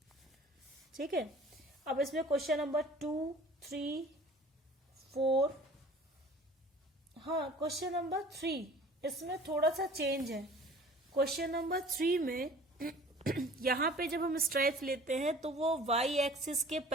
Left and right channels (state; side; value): normal; both; correlation 0.47